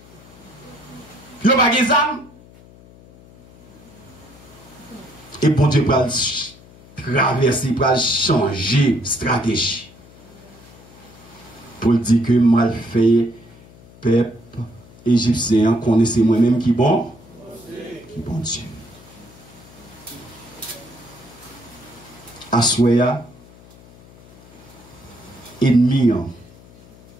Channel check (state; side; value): noise; left; hum, 23 dB below the sound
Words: Ils n'ont pas des âmes. Et bon Dieu va traverser, va changer stratégie. Pour dire que mal fait, peuple égyptien, connaissez moi-même qui bon? Qui bon Dieu. Assoya, ennemi,